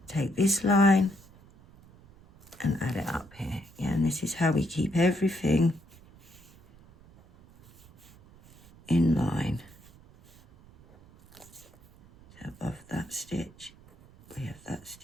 Take this line and add it up here, yeah, and this is how we keep everything in line. So above that stitch, we have that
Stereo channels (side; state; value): right; noise; rumble, 25 dB below the sound